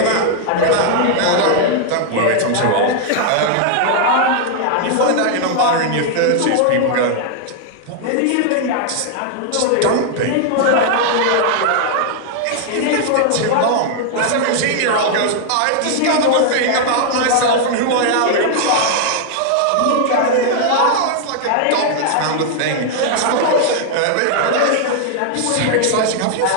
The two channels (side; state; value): both; different; correlation 0.00